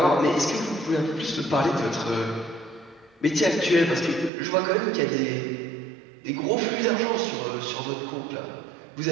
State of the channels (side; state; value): left; drops out; at 4.3 s